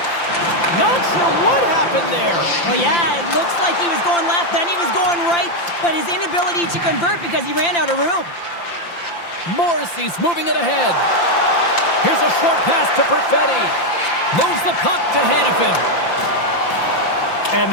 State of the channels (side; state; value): right; late; 5.8 ms